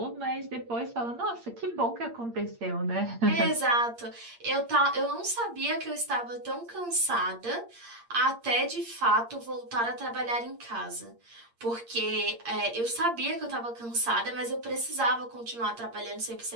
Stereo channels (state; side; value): late; left; 8.6 ms